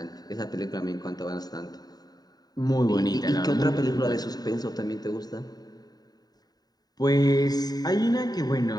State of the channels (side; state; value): right; late; 0.19 ms